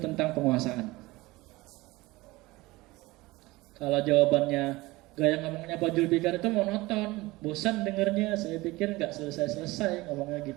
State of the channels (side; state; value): left; quieter; 20.6 dB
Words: penguasaan. Kalau jawabannya gaya ngomongnya Pak Julfikar itu monoton, bosan dengernya. Saya pikir nggak selesai-selesai ngomongnya